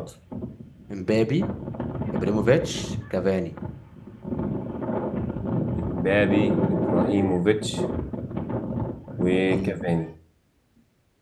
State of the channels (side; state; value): both; identical; correlation 1.00